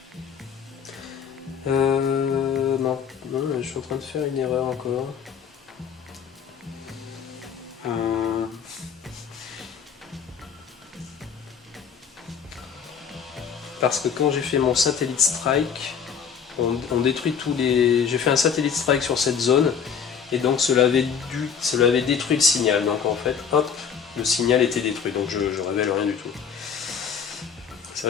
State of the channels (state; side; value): quieter; right; 6.9 dB